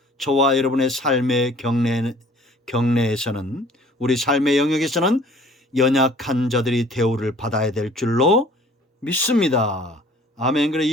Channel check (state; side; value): normal; both; correlation 0.52